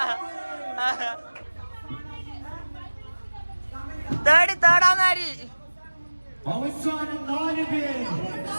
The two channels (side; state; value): both; inverted; correlation -1.00